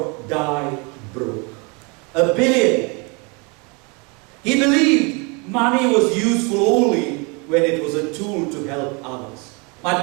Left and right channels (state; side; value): quieter; left; 31.0 dB